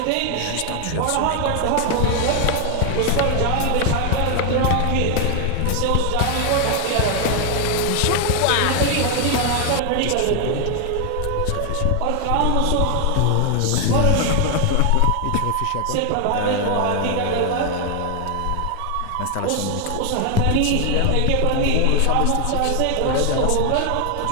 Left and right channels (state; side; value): different; both; correlation 0.00